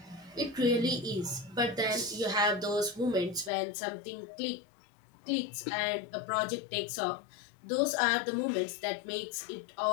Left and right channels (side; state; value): right; drops out; at 3.5 s